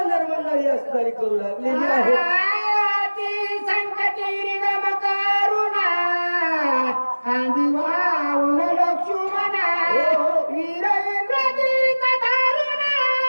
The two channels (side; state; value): both; inverted; correlation -1.00